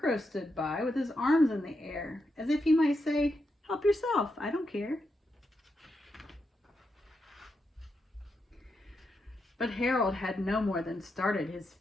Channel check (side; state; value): both; normal; correlation 0.84